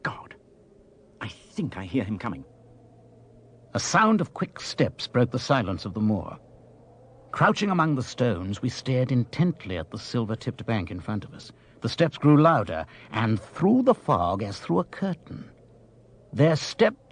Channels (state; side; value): identical; both; correlation 1.00